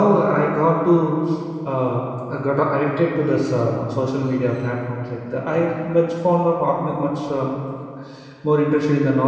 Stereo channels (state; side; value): identical; both; correlation 1.00